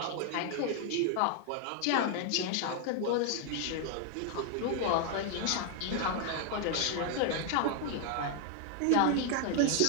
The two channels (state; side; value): different; both; correlation 0.00